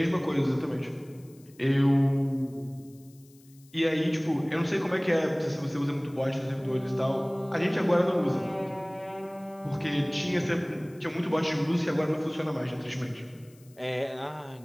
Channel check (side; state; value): left; noise; hiss, 28 dB below the sound